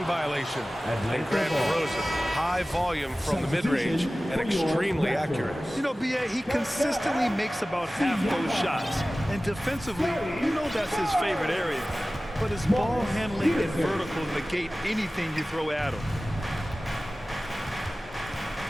violation. And grant DeRozan high volume from the mid-range and extremely accurate. You know, B.A., he consistently makes about half those shots. And defensively, you know that's his favorite area. But his ball handling and vertical negate anything you throw at him.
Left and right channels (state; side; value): normal; both; correlation 0.97